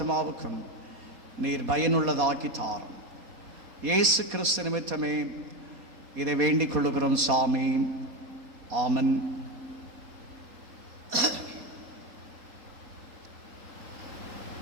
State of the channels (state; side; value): late; left; 4.2 ms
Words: நீர் பயனுள்ளதாக்கி தாரும். இயேசு கிறிஸ்து நிமித்தமே இதை வேண்டிக் கொள்ளுகிறோம் சாமி. ஆமன்.